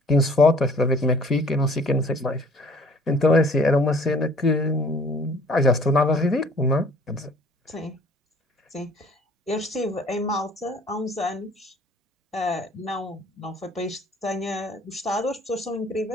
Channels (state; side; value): normal; both; correlation 0.54